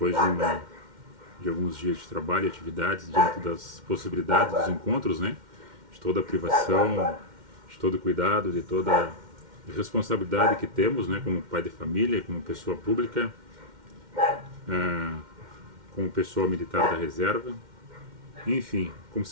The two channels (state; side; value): late; left; 2.1 ms